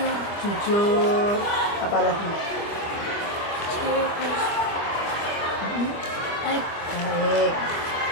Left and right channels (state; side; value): late; right; 25 ms